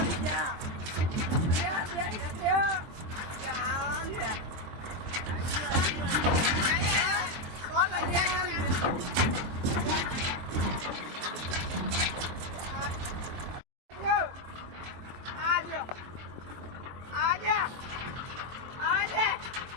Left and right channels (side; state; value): left; late; 23 ms